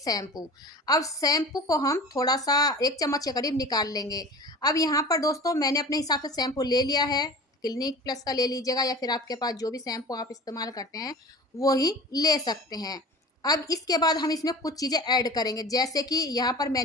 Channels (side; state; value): both; normal; correlation 0.37